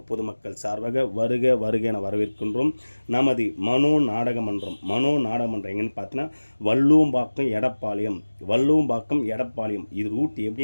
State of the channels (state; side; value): inverted; both; correlation -1.00